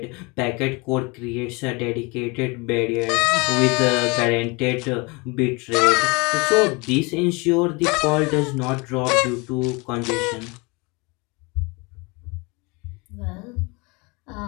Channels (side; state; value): right; quieter; 27.8 dB